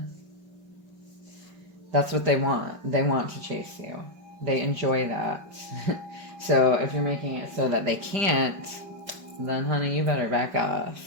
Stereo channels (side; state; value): left; late; 5.3 ms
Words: That's what they want. They want to chase you. They enjoy that. So if you're making it so that they can't, then honey, you better back off.